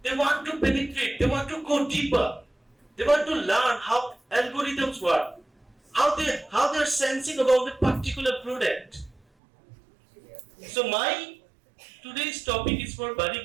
They want to penetrate, they want to go deeper, they want to learn how algorithms work, how they're sensing about a particular product. So my today's topic is for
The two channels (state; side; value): drops out; left; at 9.2 s